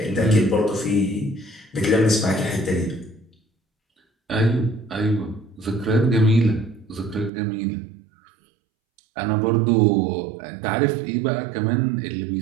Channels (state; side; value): drops out; left; at 7.3 s